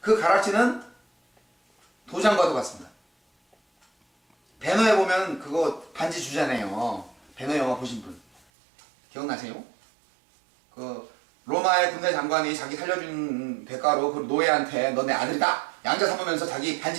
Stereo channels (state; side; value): drops out; left; at 8.4 s